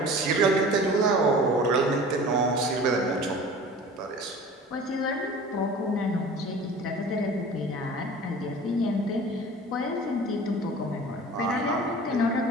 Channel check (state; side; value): normal; both; correlation 0.41